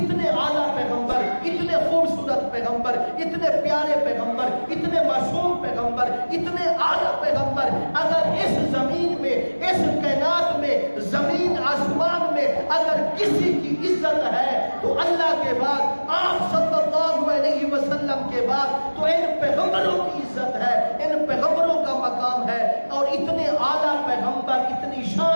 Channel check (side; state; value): both; inverted; correlation -1.00